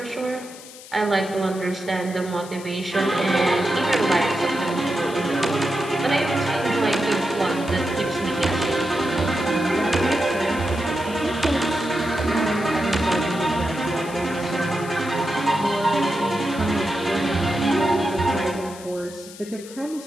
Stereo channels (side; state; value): left; noise; hiss, 17 dB below the sound